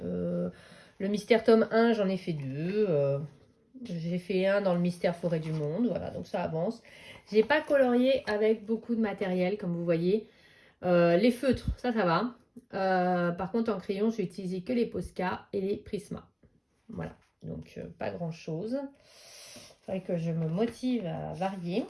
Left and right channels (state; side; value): identical; both; correlation 1.00